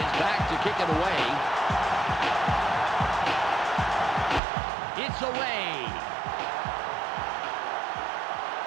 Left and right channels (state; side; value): drops out; left; at 4.4 s